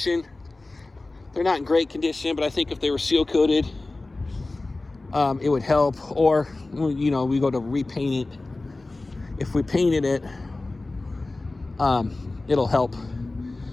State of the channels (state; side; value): quieter; right; 3.1 dB